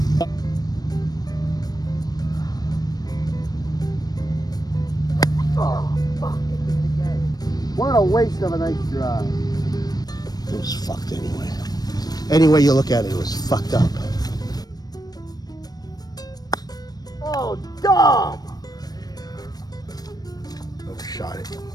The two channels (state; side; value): late; right; 0.19 ms